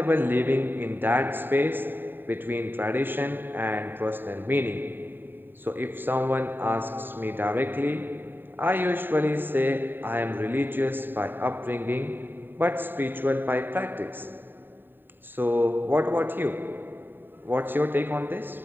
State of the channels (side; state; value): left; late; 0.095 ms